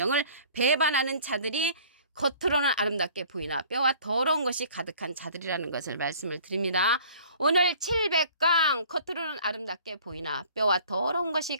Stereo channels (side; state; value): both; inverted; correlation -0.51